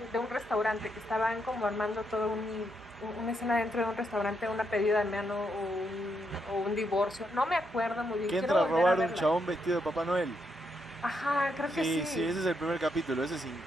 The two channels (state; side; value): normal; both; correlation 0.79